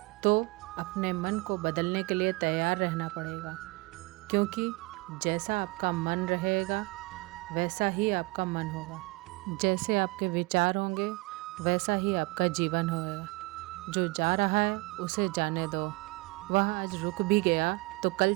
तो अपने मन को बदलने के लिए तैयार रहना पड़ेगा, क्योंकि जैसा आपका मन रहेगा वैसा ही आपका मन होगा। जैसे आपके विचार होंगे वैसा ही आपका जीवन होगा। जो जा रहा है उसे जाने दो, वह आज रुक भी गया तो कल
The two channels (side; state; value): left; quieter; 24.9 dB